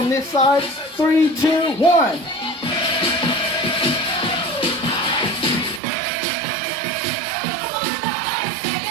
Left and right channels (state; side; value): drops out; left; at 5.8 s